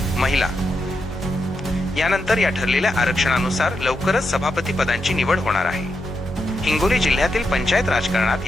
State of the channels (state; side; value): normal; both; correlation 0.84